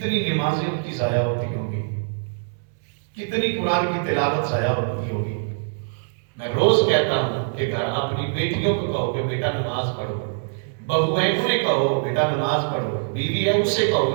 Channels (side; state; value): left; silent; digital silence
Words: نمازیں ان کی ضائع ہوتی ہوں گی، کتنی قرآن کی تلاوت ضائع ہوتی ہوگی۔ میں روز کہتا ہوں کہ گھر اپنی بیٹیوں کو کہو کہ بیٹا نماز پڑھو، بہو ہے انہیں کہو بیٹا نماز پڑھو، بیوی ہے اسے